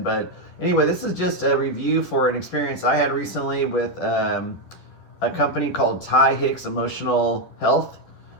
But anyway, this is just a review for an experience I had recently with a company called Hicks Emotional Health.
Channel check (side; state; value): right; late; 11 ms